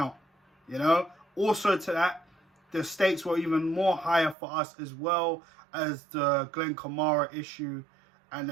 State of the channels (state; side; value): drops out; left; at 4.4 s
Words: you know. Also to that, the stakes were even more higher for us as well as the Glenn Kamara issue and the